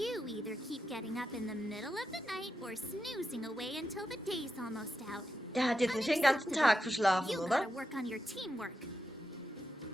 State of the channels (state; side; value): normal; both; correlation 0.87